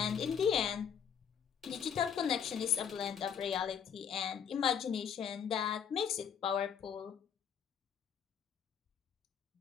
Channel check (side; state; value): right; quieter; 7.9 dB